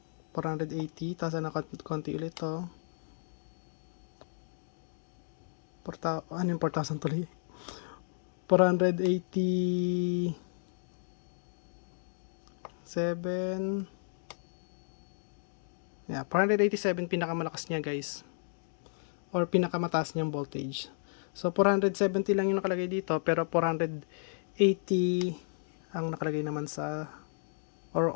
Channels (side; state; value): right; silent; digital silence